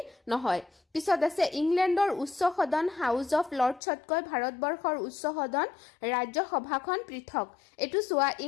নহয় পিছত আছে ইংলেণ্ডৰ উচ্চ সদন হাউস অফ লৰ্ডছতকৈ ভাৰতবৰ্ষৰ উচ্চ সদন ৰাজ্যসভাখন পৃথক এটো চোৱা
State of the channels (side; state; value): right; drops out; at 3.8 s